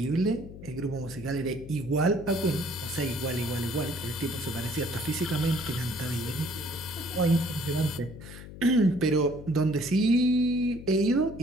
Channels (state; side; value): noise; left; hum, 14 dB below the sound